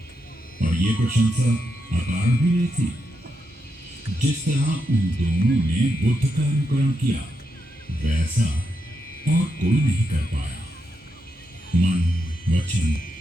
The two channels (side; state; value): both; normal; correlation 0.84